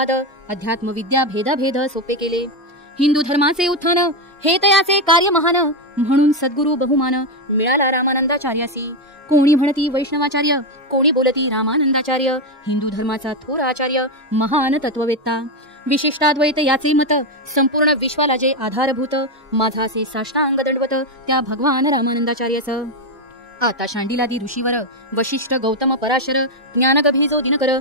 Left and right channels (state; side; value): normal; both; correlation 0.07